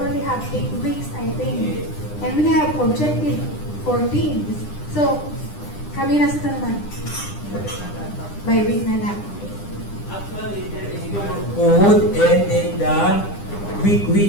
have 8 weeks, I think. And we have objective 14. So, kami na sa naman. By week na lang. Actually, there is no code and then the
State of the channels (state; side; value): late; right; 9.9 ms